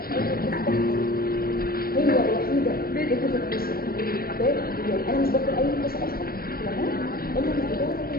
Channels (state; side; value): late; right; 0.43 ms